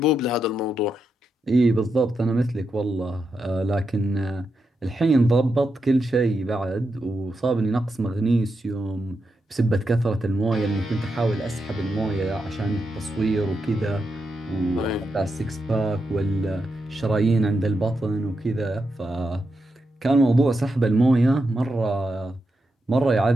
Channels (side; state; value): both; normal; correlation 0.85